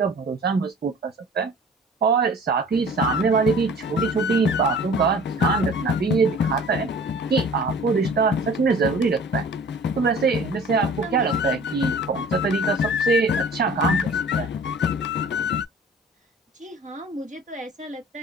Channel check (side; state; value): both; normal; correlation 0.46